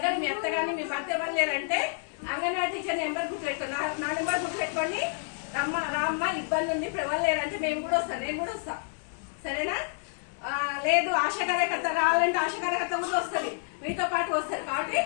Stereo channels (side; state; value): right; silent; 59 dB below the other